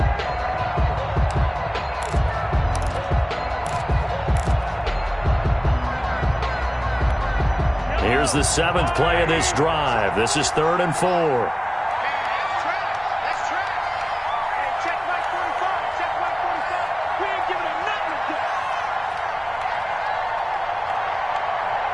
Here's the 7th play of this drive. This is 3rd and 4. Let's try. Hey, check Mike 45. Check Mike 45. We ain't giving him nothing to do.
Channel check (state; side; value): identical; both; correlation 1.00